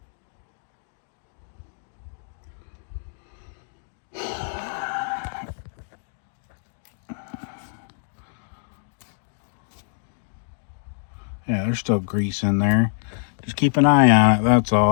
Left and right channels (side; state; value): right; silent; digital silence